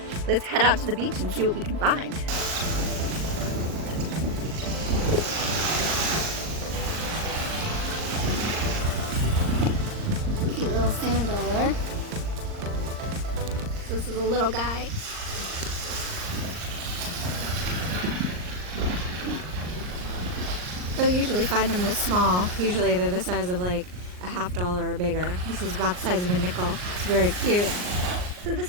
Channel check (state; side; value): late; left; 39 ms